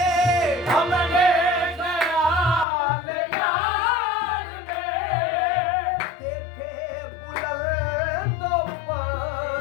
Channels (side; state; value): right; drops out; at 2.7 s